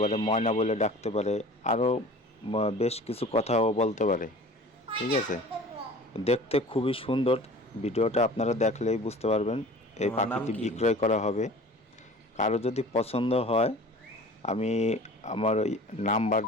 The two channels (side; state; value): both; normal; correlation 0.43